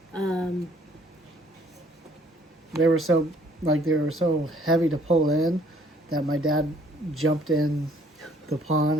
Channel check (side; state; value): both; normal; correlation 0.61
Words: They were so heavy to pull in that my dad jumped in the pond